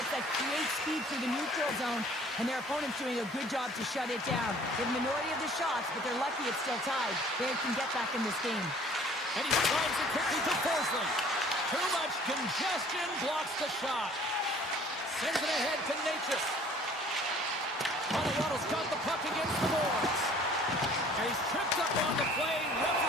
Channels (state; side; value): normal; both; correlation 0.53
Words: that create speed through the neutral zone, and their opponent's doing a good job to shut it down. They have a minority of the shots, but they're lucky it's still tied. They can get back in this game. And he slides it quickly to Forsling. Too much congestion blocks the shot. Sends it ahead to Natchez. Colorado's got the puck against the boards. And he's tripped up on the play.